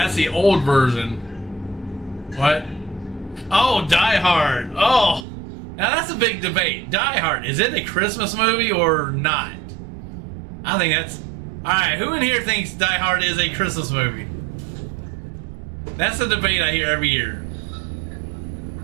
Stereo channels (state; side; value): drops out; left; at 5.2 s